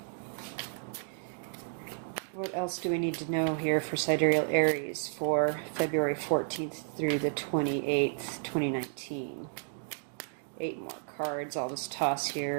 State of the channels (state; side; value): silent; left; digital silence